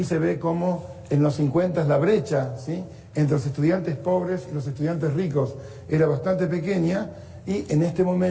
se ve cómo en los 50 la brecha, ¿sí?, entre los estudiantes pobres y los estudiantes ricos era bastante pequeña, y en este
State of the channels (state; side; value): identical; both; correlation 1.00